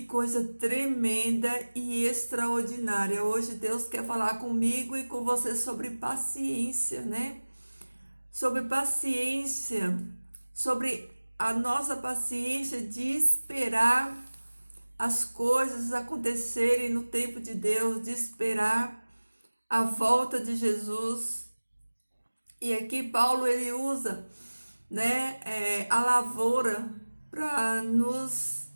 coisa tremenda e extraordinária. Hoje Deus quer falar comigo e com você sobre paciência, né? Sobre paciência, sobre a nossa paciência de esperar as coisas acontecerem no tempo de Deus, de esperar a volta de Jesus. E aqui Paulo ele usa, né, a lavoura para nos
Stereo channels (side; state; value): both; inverted; correlation -1.00